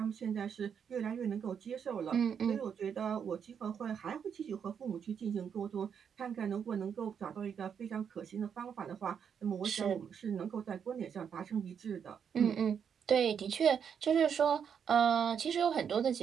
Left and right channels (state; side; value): quieter; left; 7.5 dB